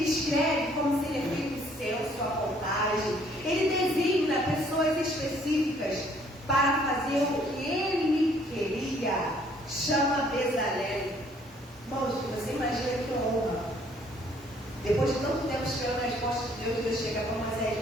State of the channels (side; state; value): both; normal; correlation 0.62